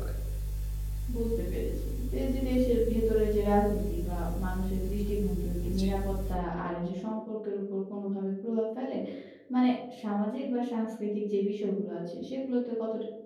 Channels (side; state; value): both; identical; correlation 1.00